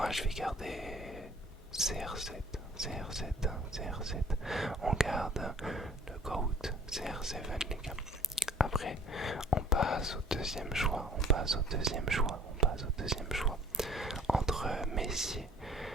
je vais garder CR7, CR7, CR7. On garde le GOAT, CR7 les gars. Après, on passe au deuxième choix, entre Messi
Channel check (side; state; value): both; normal; correlation 0.53